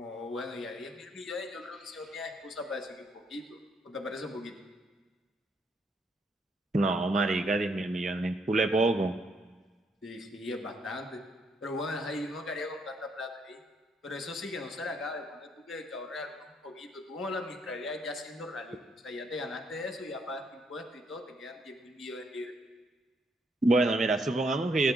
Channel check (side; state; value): both; normal; correlation 0.72